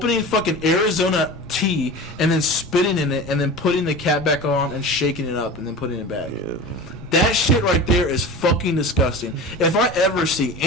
fucking Arizona tea and then spitting in it and then putting the cap back on and shaking it up and then putting it back. Yeah. That shit right there is fucking disgusting. If I ever see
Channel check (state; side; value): noise; right; rumble, 17 dB below the sound